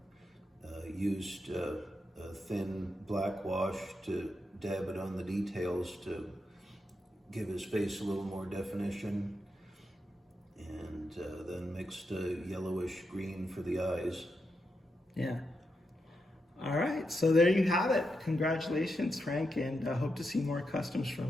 used a thin black wash to dab it on the details to give his face a little more definition, and then mixed a yellowish green for the eyes. Yeah. All right, so there you have it. Congratulations, Frank, and I hope to see more customs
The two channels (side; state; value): both; normal; correlation 0.85